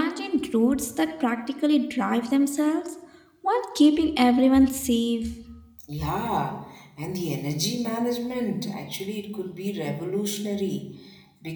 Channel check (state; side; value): identical; both; correlation 1.00